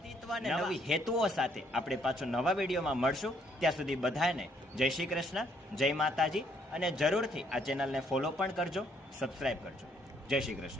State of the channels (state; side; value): normal; both; correlation 0.68